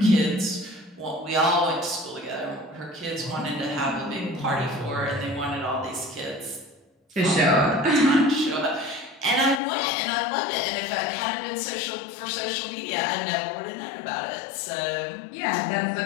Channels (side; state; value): right; drops out; at 9.6 s